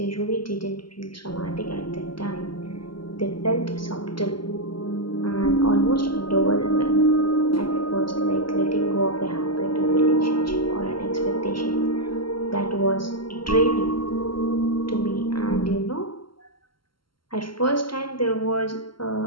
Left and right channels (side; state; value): right; late; 0.73 ms